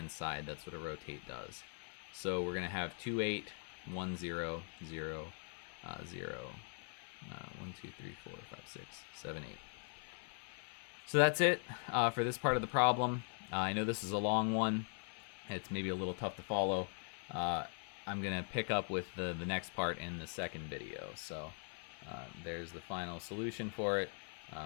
side. That's what a rotate does. So we're going to have 2, 8, 1, 0, 0, 0, 1, 2, 3, 4, 5, 6, 7, 8. So that's it for this part of the problem. I know this is a long one. It's maybe a little tough to follow. I'm going to pick up with the next part in the second video. So there's the final solution for it.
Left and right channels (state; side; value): silent; right; 50 dB below the other